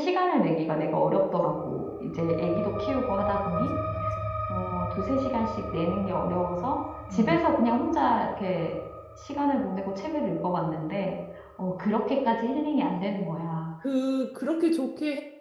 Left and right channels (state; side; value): identical; both; correlation 1.00